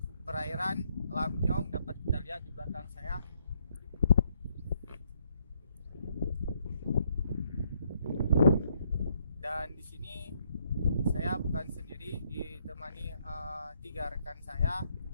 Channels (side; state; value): both; inverted; correlation -0.72